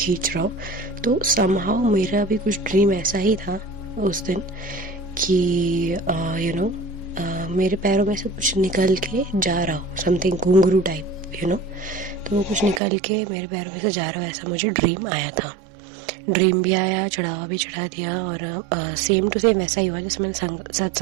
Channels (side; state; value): left; drops out; at 12.8 s